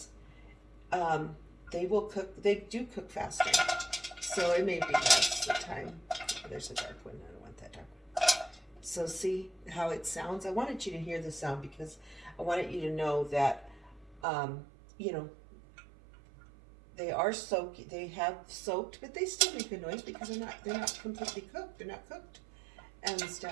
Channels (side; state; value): left; drops out; at 14.2 s